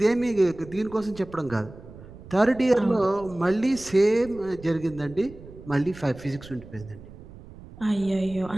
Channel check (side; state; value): right; noise; rumble, 18 dB below the sound